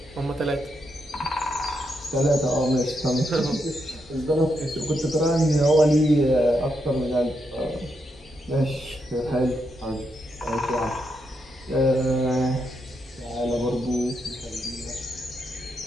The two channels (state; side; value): normal; both; correlation 0.81